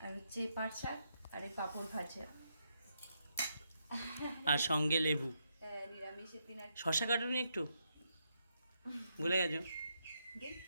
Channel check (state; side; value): inverted; both; correlation -0.80